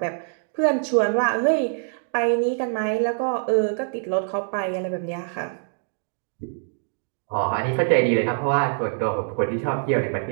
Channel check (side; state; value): left; silent; 57 dB below the other